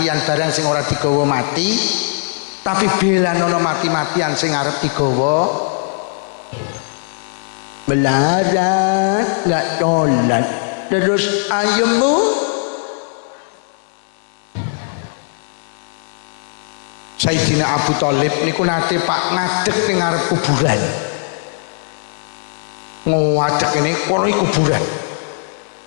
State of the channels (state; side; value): silent; right; digital silence